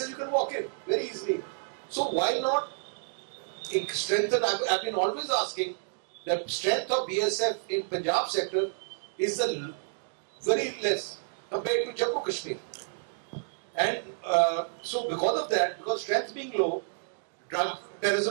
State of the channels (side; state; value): left; silent; digital silence